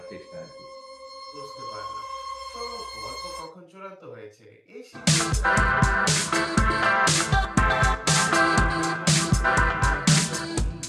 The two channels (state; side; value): identical; both; correlation 1.00